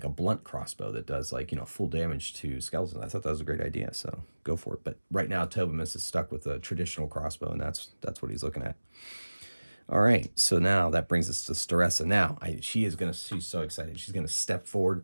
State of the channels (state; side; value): inverted; both; correlation -1.00